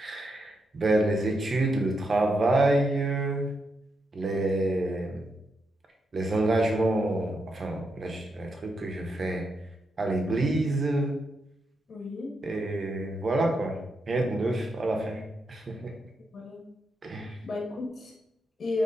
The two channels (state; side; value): normal; both; correlation 0.83